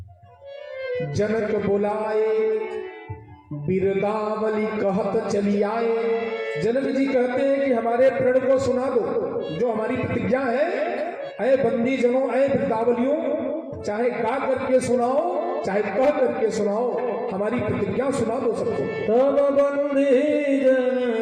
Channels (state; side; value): identical; both; correlation 1.00